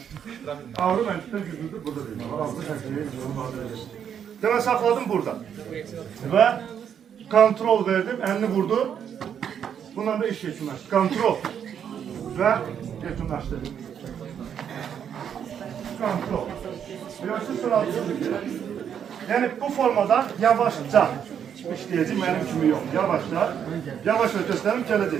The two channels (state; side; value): quieter; left; 8.4 dB